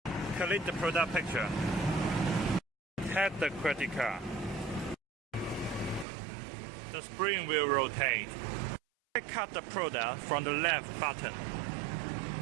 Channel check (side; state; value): left; drops out; at 6.1 s